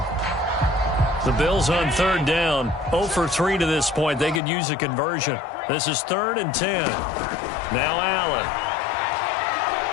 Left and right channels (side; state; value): right; drops out; at 4.4 s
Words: The Bills on 3rd down. 0 for 3 to this point. They could use a conversion. This is 3rd and 10. Now Allen.